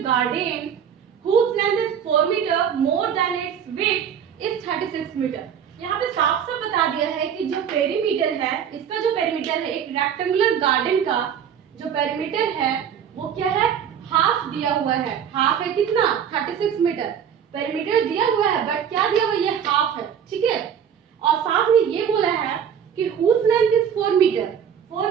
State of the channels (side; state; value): left; quieter; 8.3 dB